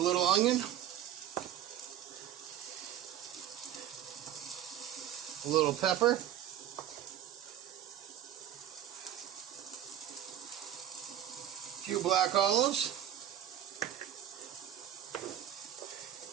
onion, a little pepper, a few black olives,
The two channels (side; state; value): left; quieter; 10.9 dB